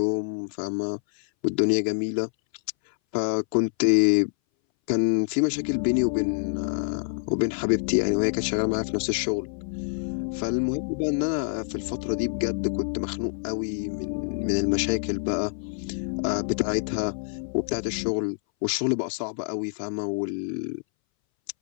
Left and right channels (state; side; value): silent; right; 60 dB below the other